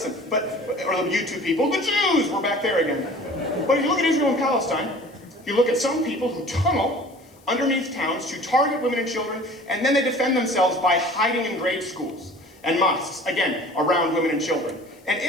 Or you two people, the Jews! We're back there again. But if you look at Israel and Palestine, you look at some people who tunnel underneath towns to target women and children, and then they defend themselves by hiding in grade schools and mosques, again, around women and children. And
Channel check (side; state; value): left; noise; hiss, 29 dB below the sound